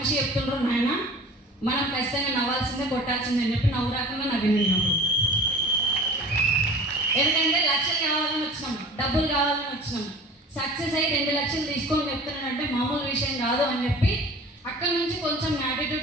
చెప్తుండ్రు, నాయన మనం ఖచ్చితంగా నవ్వాల్సిందే, కొట్టాల్సిందే అని చెప్పి నవ్వు రాకుండా నవ్వినప్పుడు. ఎందుకంటే లక్షలు కావాలని వచ్చినాం, డబ్బులు కావాలని వచ్చినాం. సక్సెస్ అయ్యి 2 లక్షలు తీసుకొని చెప్తున్నానంటే మామూలు విషయం కాదు అని చెప్పి అక్కడి నుంచి కొంచెం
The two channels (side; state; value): both; normal; correlation 0.41